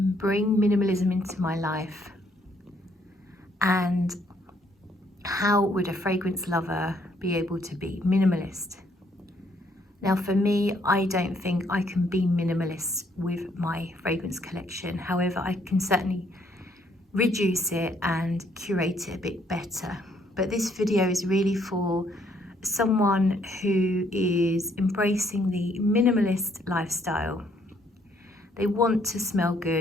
bring minimalism into my life, and how would a fragrance lover be able to be minimalist. Now for me, I don't think I can be minimalist with my fragrance collection. However, I can certainly reduce it and curate it a bit better. But this video is really for someone who is embracing the minimalist lifestyle. They want to smell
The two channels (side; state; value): both; normal; correlation 0.69